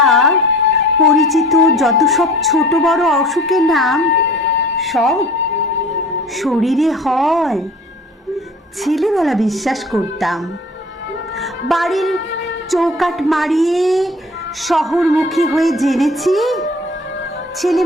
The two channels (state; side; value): normal; both; correlation 0.45